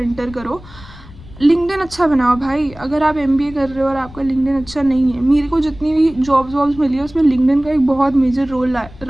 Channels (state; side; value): noise; left; rumble, 19 dB below the sound